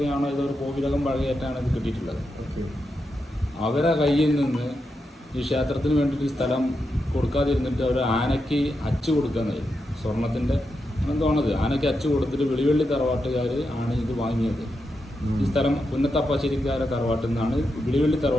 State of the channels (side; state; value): both; normal; correlation 0.86